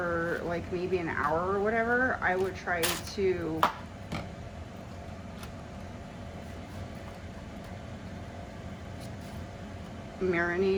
like maybe an hour or whatever, I would try to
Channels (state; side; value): identical; both; correlation 1.00